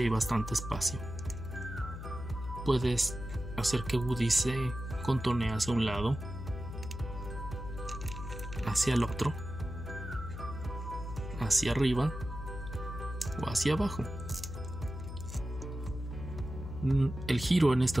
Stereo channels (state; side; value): noise; left; hum, 8 dB below the sound